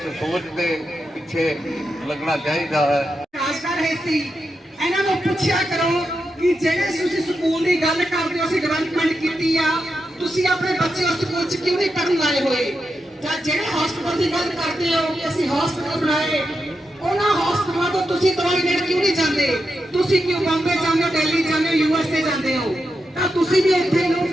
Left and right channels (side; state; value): both; normal; correlation 0.87